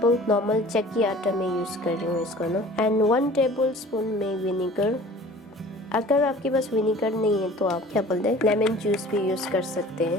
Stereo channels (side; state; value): both; normal; correlation 0.46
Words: नॉर्मल चक्की आटा में यूज़ कर रही हूँ इसको ना, एंड 1 टेबलस्पून में विनेगर। अगर आपके पास विनेगर नहीं है तो आप क्या बोलते हैं लेमन जूस भी यूज़ कर सकते